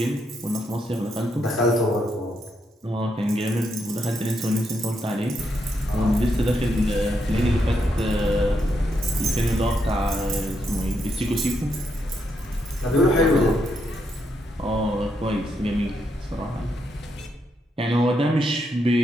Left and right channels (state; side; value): normal; both; correlation 0.79